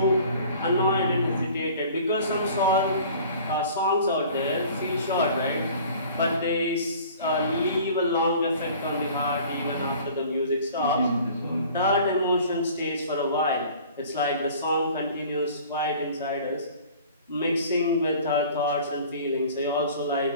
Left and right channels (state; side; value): inverted; both; correlation -0.47